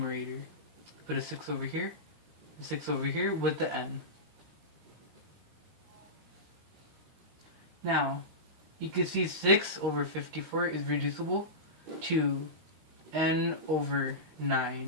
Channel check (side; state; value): left; late; 19 ms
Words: Put a 6 over here, a 6 over here with the n. Now, you can see 6 over 54 is reducible to n over